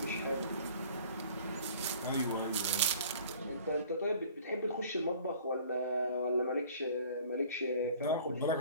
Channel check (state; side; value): inverted; both; correlation -0.50